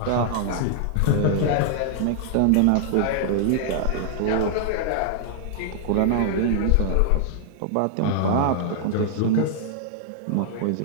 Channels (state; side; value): different; both; correlation -0.01